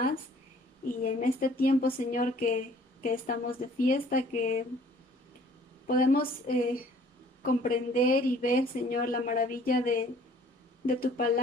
Y en este tiempo, Señor, que estamos de fiesta, que podemos comprender y ver, Señor, la maravilla de tu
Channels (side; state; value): both; normal; correlation 0.55